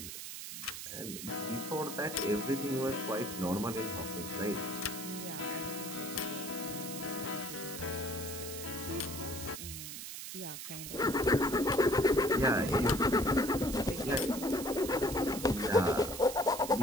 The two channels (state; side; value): noise; right; hiss, 8 dB below the sound